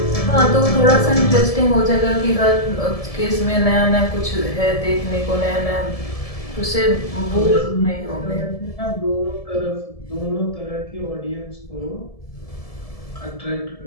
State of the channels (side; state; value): right; late; 1.7 ms